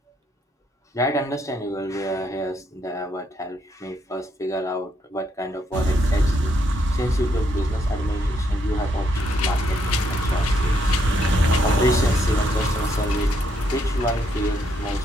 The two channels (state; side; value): normal; both; correlation 0.75